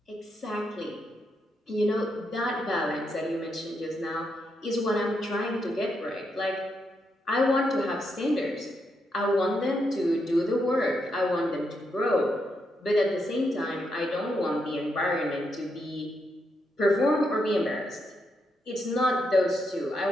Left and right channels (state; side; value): normal; both; correlation 0.81